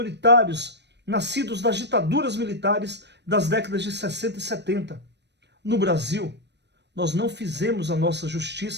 nascidos das ditaduras militares das décadas de 60 e 70. No Brasil, nós não fizemos a nossa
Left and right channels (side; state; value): left; late; 0.50 ms